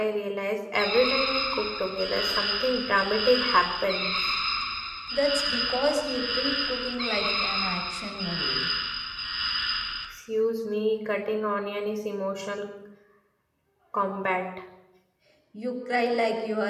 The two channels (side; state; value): both; identical; correlation 1.00